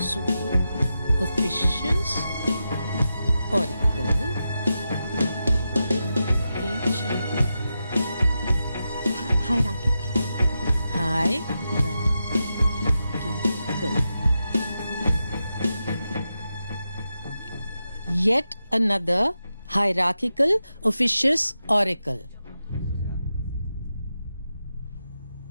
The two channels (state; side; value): inverted; both; correlation -0.89